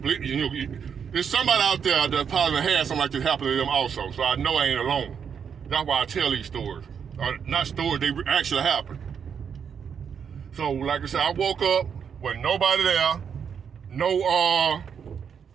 There's somebody out there that probably had something like this happen to them also. So I know I ain't alone. That's why I tell these stories. Not stories, they actually happened. So like I said, I woke up with nobody there. I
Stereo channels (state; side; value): quieter; left; 7.2 dB